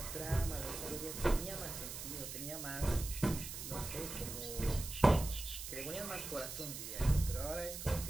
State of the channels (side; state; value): right; noise; hiss, 7 dB below the sound